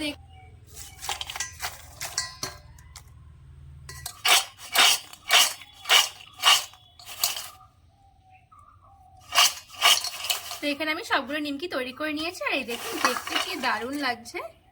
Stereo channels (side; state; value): both; identical; correlation 1.00